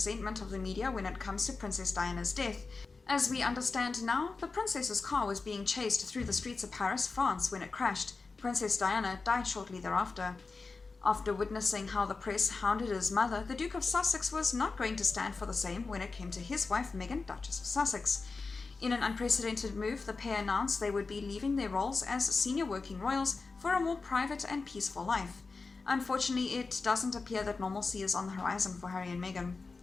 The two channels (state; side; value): quieter; right; 4.2 dB